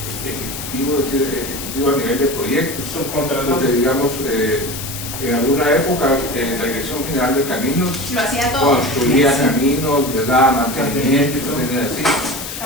ejecutivo, es decir, ejecutivo a nivel de proyectos. Porque digamos, en alguna época la Dirección General de Caminos Lo hacía todo. construía caminos, les daba mantenimiento, tenía así.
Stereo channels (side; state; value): left; noise; hiss, 8 dB below the sound